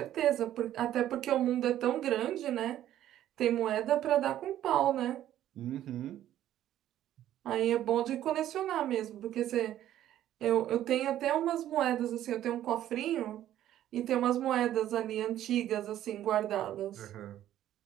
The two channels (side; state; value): left; quieter; 12.3 dB